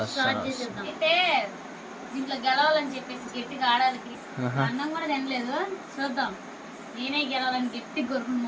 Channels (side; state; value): both; identical; correlation 1.00